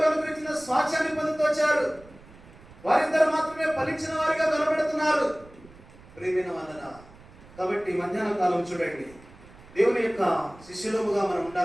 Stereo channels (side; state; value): right; noise; rumble, 22 dB below the sound